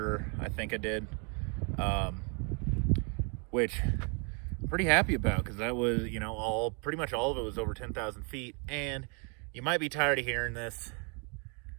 I think I did. Which I'm pretty happy about, because that was, you know, pretty much all of it was over 10,000 feet. And you might be tired of hearing this.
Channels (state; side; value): quieter; left; 36.2 dB